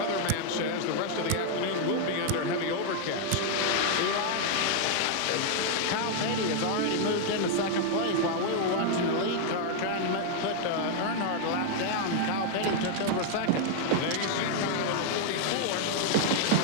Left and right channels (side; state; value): both; different; correlation 0.00